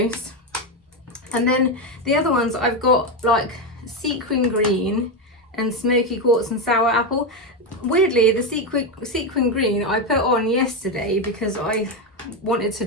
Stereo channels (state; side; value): normal; both; correlation 0.10